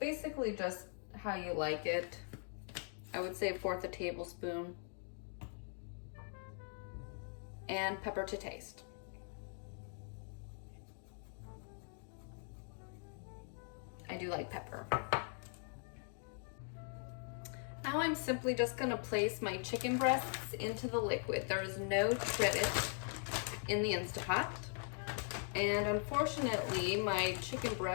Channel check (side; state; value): right; silent; 50 dB below the other